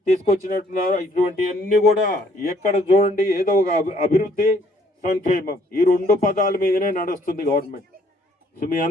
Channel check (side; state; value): both; normal; correlation 0.64